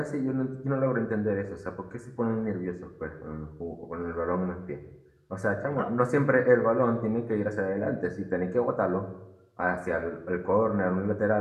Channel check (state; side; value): identical; both; correlation 1.00